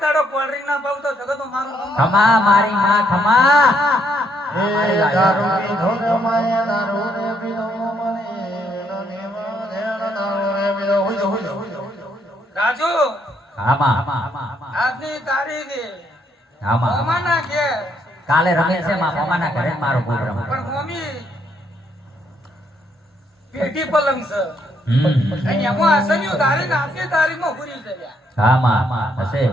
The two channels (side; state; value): both; normal; correlation 0.72